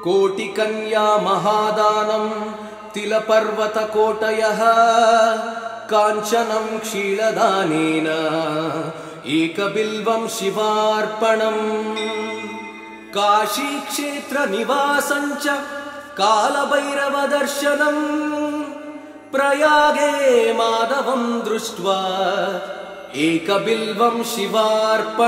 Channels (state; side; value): identical; both; correlation 1.00